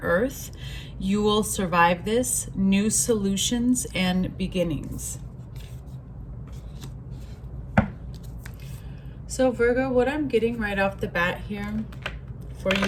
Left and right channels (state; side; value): identical; both; correlation 1.00